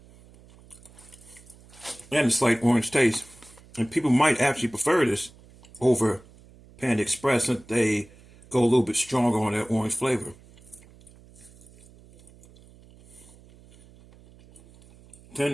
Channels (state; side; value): noise; right; hum, 24 dB below the sound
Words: and a slight orange taste. And people might actually prefer this over Panda Express since they go a little bit stronger on that orange flavor.